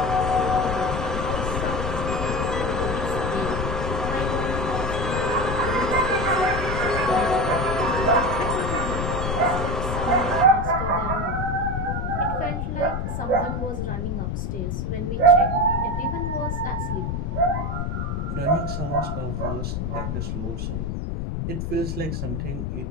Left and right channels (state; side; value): noise; left; rumble, 2 dB below the sound